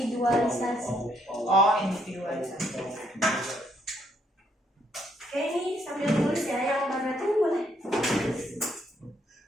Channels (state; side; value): normal; both; correlation 0.72